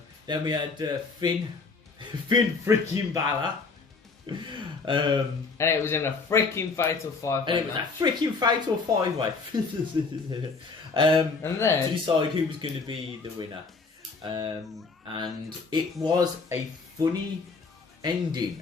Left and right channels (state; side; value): quieter; right; 4.4 dB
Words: we had Finn freaking Balor. And it was in a freaking fatal 5-way. And it was a freaking fatal 5-way. And then to decide who was going to be the winner. And it was a funny